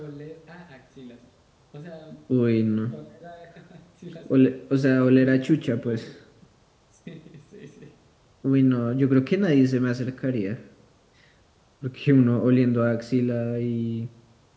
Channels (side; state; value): both; identical; correlation 1.00